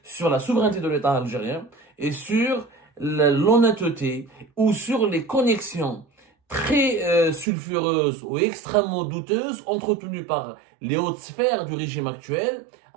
sur la souveraineté de l'État algérien et sur l'honnêteté ou sur les connexions très sulfureuses ou extrêmement douteuses entretenues par les hautes sphères du régime actuel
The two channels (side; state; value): left; drops out; at 7.5 s